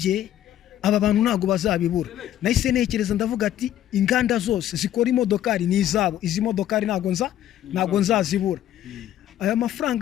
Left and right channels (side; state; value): right; quieter; 11.9 dB